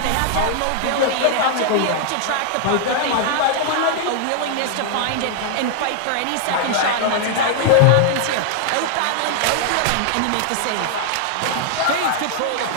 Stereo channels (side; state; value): both; different; correlation 0.00